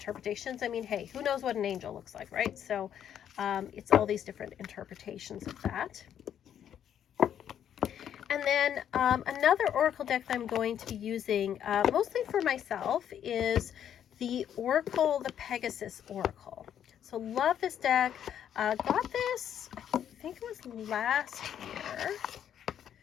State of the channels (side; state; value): right; quieter; 9.6 dB